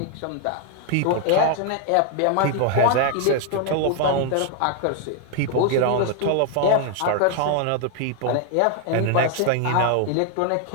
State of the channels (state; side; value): different; both; correlation 0.00